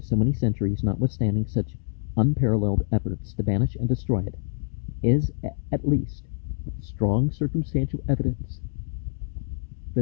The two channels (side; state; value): right; silent; 61 dB below the other